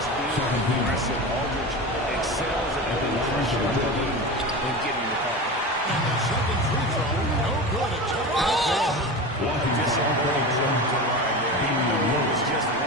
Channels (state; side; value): normal; both; correlation 0.27